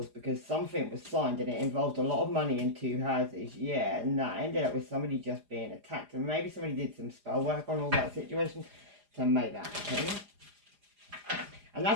because something was signed and it involved a lot of money in two houses. Yeah, and that ended up with somebody just being attacked. And maybe somebody did some spell work on all that situation to make that happen. And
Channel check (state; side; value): late; left; 4.9 ms